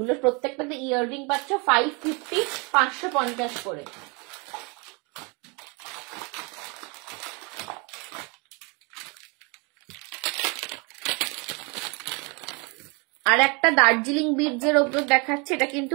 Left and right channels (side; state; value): left; quieter; 30.9 dB